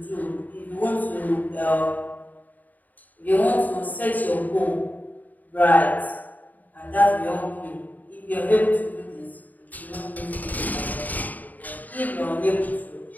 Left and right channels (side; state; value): right; late; 0.081 ms